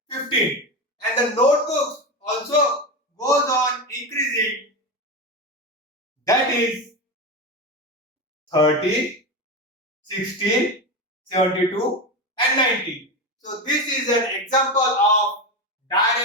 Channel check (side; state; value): both; normal; correlation 0.19